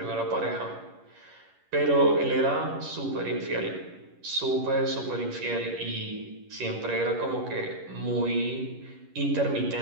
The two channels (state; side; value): late; left; 11 ms